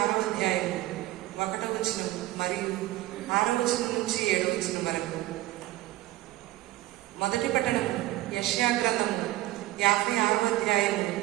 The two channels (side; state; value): left; quieter; 17.3 dB